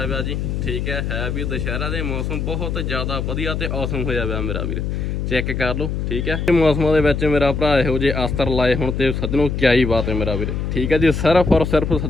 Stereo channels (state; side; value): noise; left; hum, 2 dB below the sound